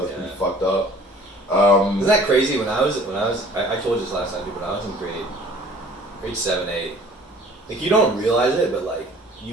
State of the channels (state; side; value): normal; both; correlation 0.51